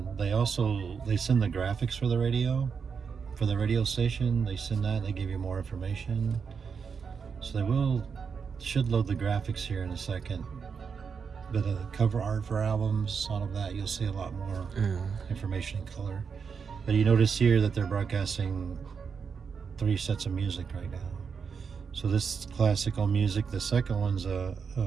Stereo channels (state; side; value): quieter; left; 6.0 dB